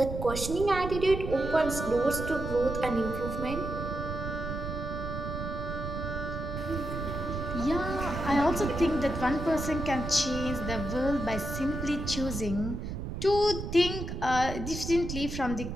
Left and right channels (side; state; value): right; noise; rumble, 6 dB below the sound